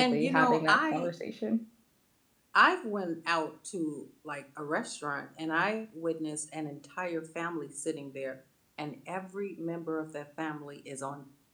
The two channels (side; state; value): both; identical; correlation 1.00